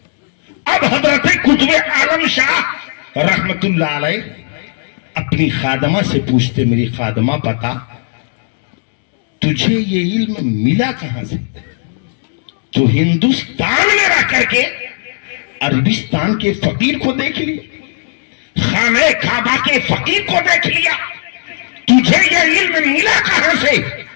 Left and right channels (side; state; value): right; silent; digital silence